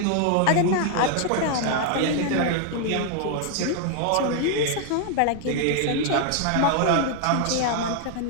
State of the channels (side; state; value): both; different; correlation 0.00